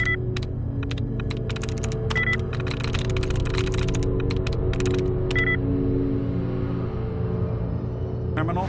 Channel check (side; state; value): both; identical; correlation 1.00